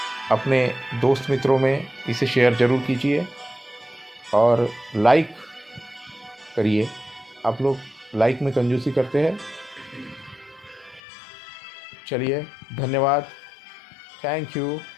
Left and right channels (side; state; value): right; drops out; at 11.0 s